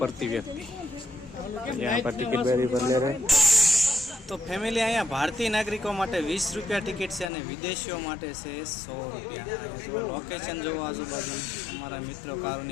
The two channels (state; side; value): drops out; right; at 7.3 s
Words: व्यक्ति। यहाँ पर टिकट बेरी पर ले रहे। तो फैमिली अँ भारतीय नागरिकों माटे 20 रुपया टिकट से और विदेशियों माटे से 100 रुपया। अँ जो लोकेशन जो आजूबाजू अमरा मित्रों